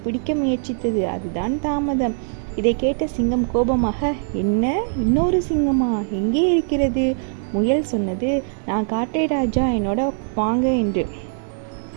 பிடிக்க முயற்சித்தது, அதுதான் தாமதம். இதை கேட்ட சிங்கம் கோபமாக, என்ன, இன்னொரு சிங்கமா? எங்கே இருக்கிறது? முயல் சொன்னது, நான் காட்டை ராஜா, என்னோட வாங்க என்று.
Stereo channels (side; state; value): left; silent; 55 dB below the other